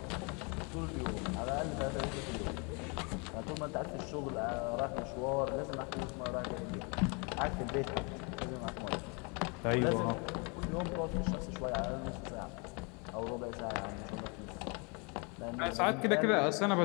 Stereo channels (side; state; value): right; quieter; 32.4 dB